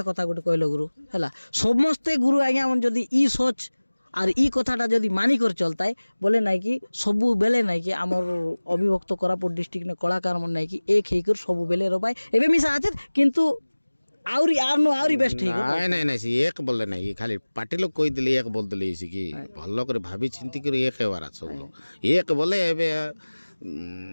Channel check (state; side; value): inverted; both; correlation -1.00